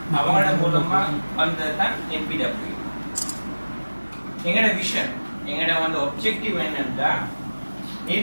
அவங்களோட மூலமா வந்ததுதான் NPWA. எங்களோட விஷன், எங்களோட வந்து ஒப்ஜெக்டிவ் என்னன்னா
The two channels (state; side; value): inverted; both; correlation -1.00